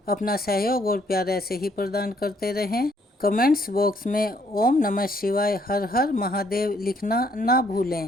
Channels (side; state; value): both; normal; correlation 0.67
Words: अपना सहयोग और प्यार ऐसे ही प्रदान करते रहें। कमेंट्स बॉक्स में ओम नमः शिवाय, हर हर महादेव लिखना ना